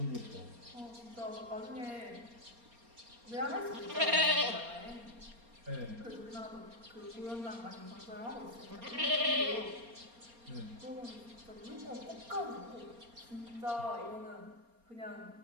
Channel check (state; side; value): late; left; 4.3 ms